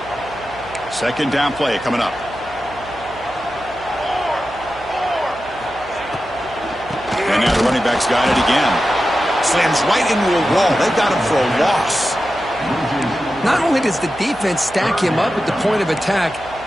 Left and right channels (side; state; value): right; noise; hum, 20 dB below the sound